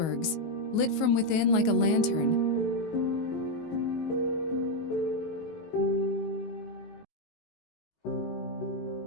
lit from within like a lantern.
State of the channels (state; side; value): late; right; 19 ms